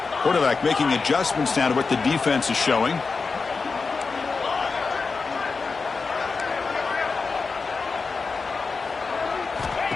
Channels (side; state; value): right; quieter; 4.5 dB